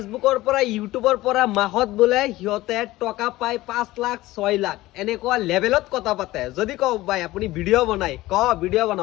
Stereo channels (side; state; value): right; quieter; 17.7 dB